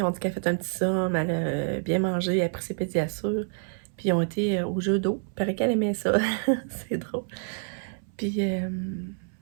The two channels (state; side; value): silent; left; 60 dB below the other